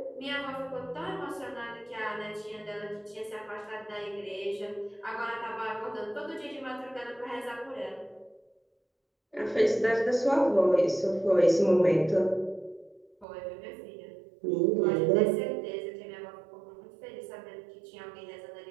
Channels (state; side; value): drops out; left; at 13.2 s